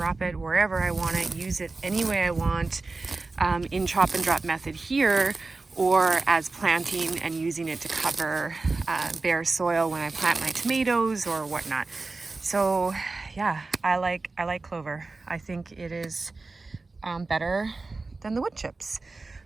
it wherever I want it, use it any way I want in chop and drop method here, or as planting and using it to cover bare soil when I plant my tomatoes or whatnot. So yeah, I like clover. I think it is better than the wood chips.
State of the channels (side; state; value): left; quieter; 3.6 dB